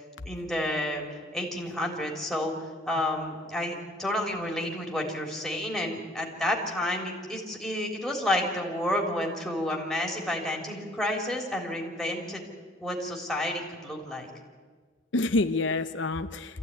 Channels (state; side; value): normal; both; correlation 0.54